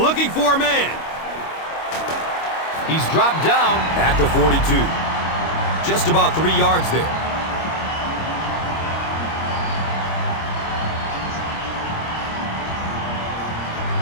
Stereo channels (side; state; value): right; late; 25 ms